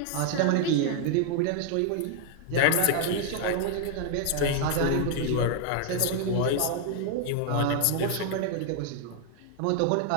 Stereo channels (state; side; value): different; both; correlation 0.00